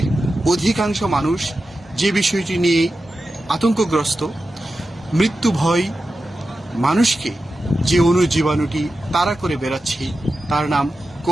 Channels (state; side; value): normal; both; correlation 0.92